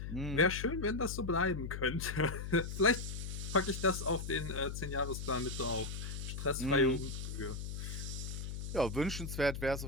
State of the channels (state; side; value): noise; left; hum, 6 dB below the sound